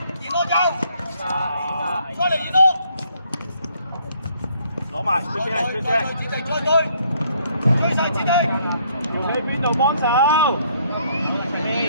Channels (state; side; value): inverted; both; correlation -0.66